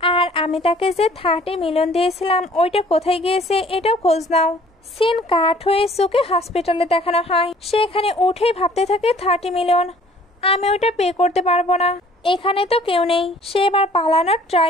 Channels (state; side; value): normal; both; correlation 0.55